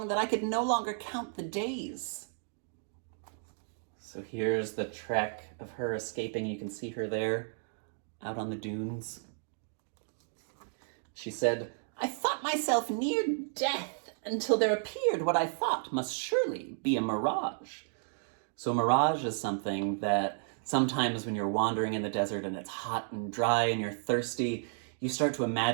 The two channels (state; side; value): silent; left; digital silence